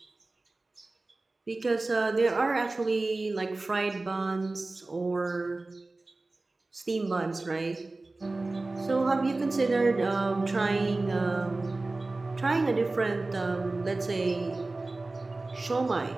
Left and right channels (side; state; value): left; quieter; 3.2 dB